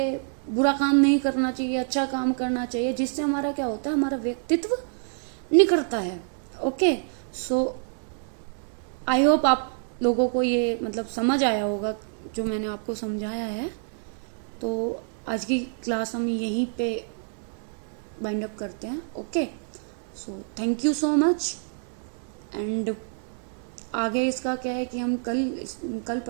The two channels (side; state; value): left; silent; 60 dB below the other